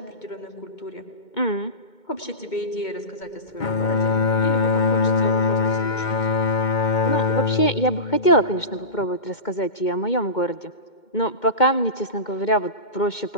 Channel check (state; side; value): late; right; 2.2 ms